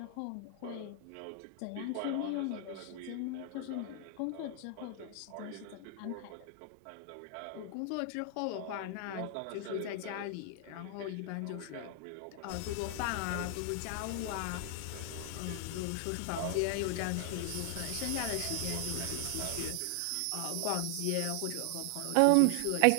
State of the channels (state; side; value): different; both; correlation 0.00